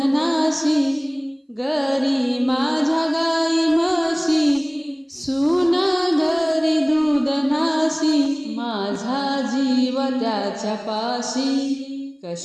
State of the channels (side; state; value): both; identical; correlation 1.00